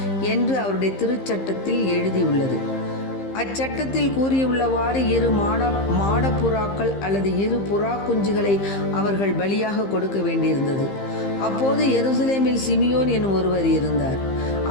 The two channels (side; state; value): right; late; 15 ms